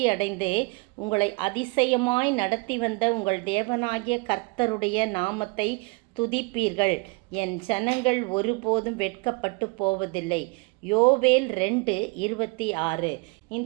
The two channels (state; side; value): quieter; left; 28.8 dB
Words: அடைந்து உங்களை அதிசயமாய் நடத்தி வந்த உங்கள் தேவனாகிய கர்த்தருடைய நாமத்தை துதிப்பீர்கள். என் ஜனங்கள் ஒருபோதும் வெட்கப்பட்டு போவதில்லை. யோவேல் 2:26.